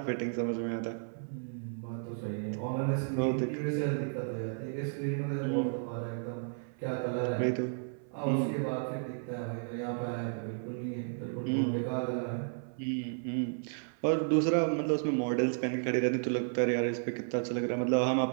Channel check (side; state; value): left; silent; 56 dB below the other